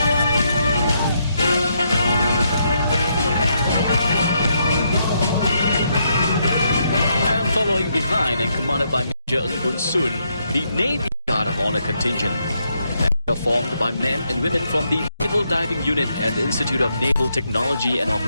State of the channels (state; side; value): inverted; both; correlation -0.78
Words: And following behind and commanded by Major Ng Bun Sun, the Navy Guard of Honor contingent. They are formed by men and women from the Naval Diving Unit and the Institute of Naval Technology and